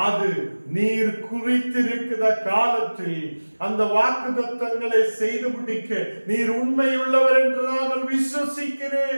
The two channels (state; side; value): inverted; both; correlation -1.00